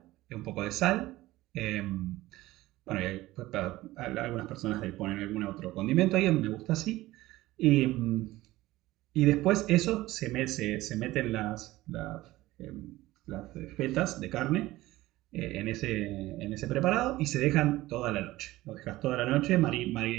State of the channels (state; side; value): quieter; left; 17.5 dB